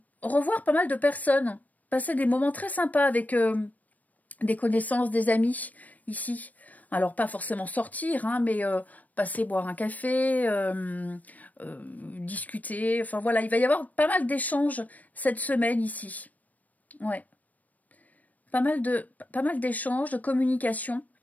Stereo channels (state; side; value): late; right; 0.075 ms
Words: revoir pas mal de personnes, passer des moments très sympas avec des connaissances, des amis, ici. Alors, pas forcément sortir, hein, mais passer boire un café, discuter. Enfin, voilà, il va y avoir pas mal d'échanges cette semaine ici. Ouais. Pas mal d'échanges, de communication.